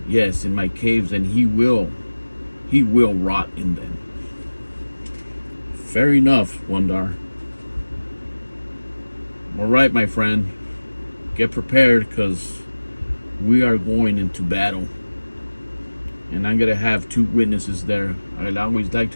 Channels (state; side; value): inverted; both; correlation -1.00